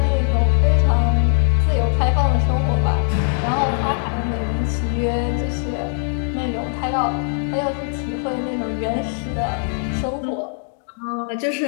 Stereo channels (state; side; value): silent; right; 65 dB below the other